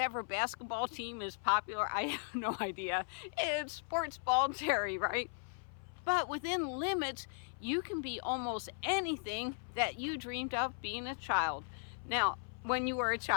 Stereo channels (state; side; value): silent; right; 53 dB below the other